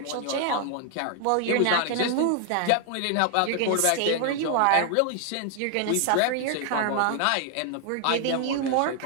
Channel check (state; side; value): different; both; correlation 0.00